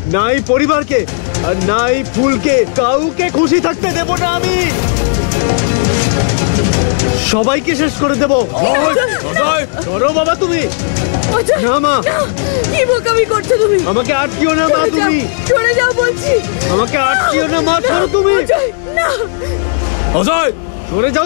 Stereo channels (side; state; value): right; silent; digital silence